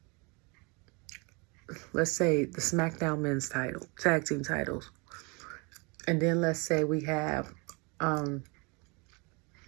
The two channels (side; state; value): left; quieter; 30.0 dB